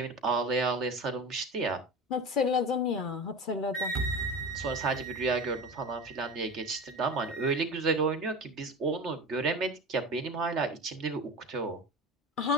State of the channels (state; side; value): normal; both; correlation 0.30